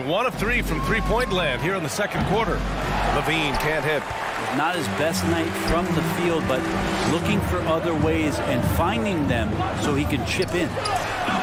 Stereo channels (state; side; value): identical; both; correlation 1.00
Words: 1 of 3 from three-point land here in the second quarter. LaVine can't hit. Not his best night from the field, but looking for other ways and finding them so he can chip in.